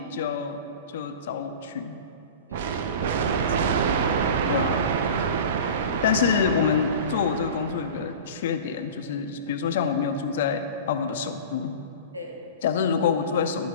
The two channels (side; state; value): both; inverted; correlation -0.35